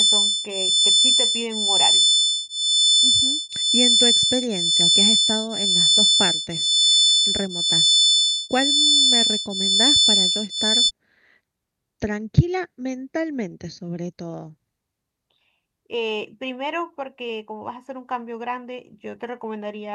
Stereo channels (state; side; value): identical; both; correlation 1.00